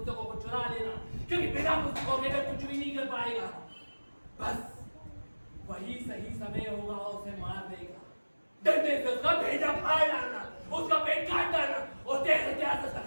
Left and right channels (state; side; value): inverted; both; correlation -1.00